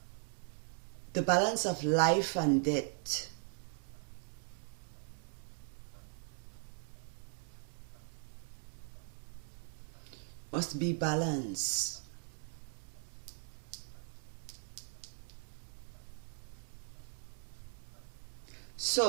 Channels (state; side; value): silent; left; 52 dB below the other